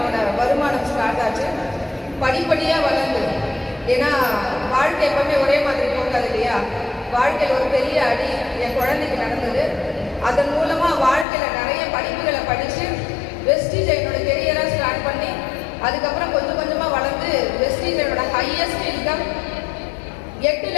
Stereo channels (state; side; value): drops out; right; at 11.2 s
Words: வருமானம் ஸ்டார்ட் ஆச்சு. படிப்படியாக வளர்ந்து, ஏன்னா வாழ்க்கை எப்பவுமே ஒரே மாதிரி போகாது இல்லையா. வாழ்க்கையில் ஒரு பெரிய அடி என் குழந்தைக்கு நடந்தது. அதன் மூலமாக வாழ்க்கையில் நிறைய படிப்புகளை படித்து வெஸ்டீஜ் என்னோட கெரியராக ஸ்டார்ட் பண்ணி அதுக்கப்புறம் கொஞ்சம் கொஞ்சமாக வளர்ந்து வெஸ்டீஜ் என்னோட ஹையஸ்ட் இன்கம்